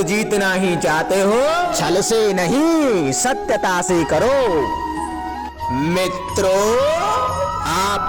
जीतना ही चाहते हो, छल से नहीं सत्यता से करो। मित्रों,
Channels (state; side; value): identical; both; correlation 1.00